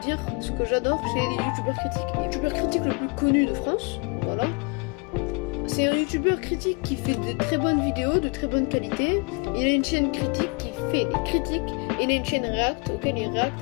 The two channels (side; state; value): right; quieter; 32.6 dB